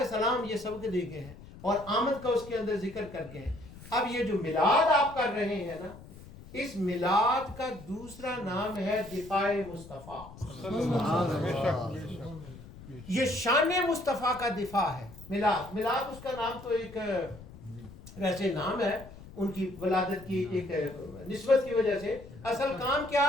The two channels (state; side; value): noise; left; rumble, 17 dB below the sound